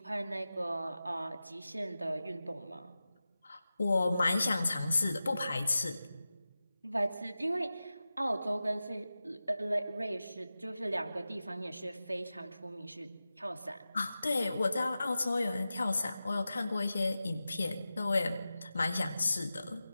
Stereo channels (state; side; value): inverted; both; correlation -0.94